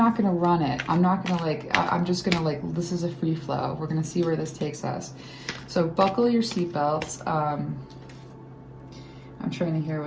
going to run it. I'm not going to I'm just going to this is a free flow. We're going to see where this takes us. So buckle your seatbelts. I'm trying to hear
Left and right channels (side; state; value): both; identical; correlation 1.00